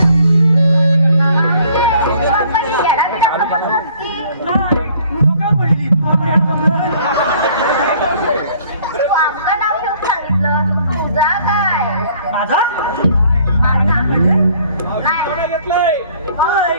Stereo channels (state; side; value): inverted; both; correlation -0.58